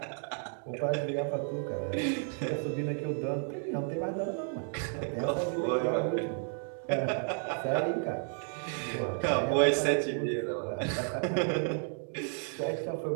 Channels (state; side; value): silent; left; 56 dB below the other